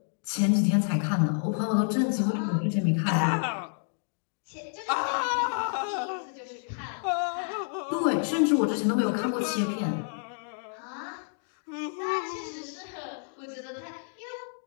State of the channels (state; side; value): silent; right; 57 dB below the other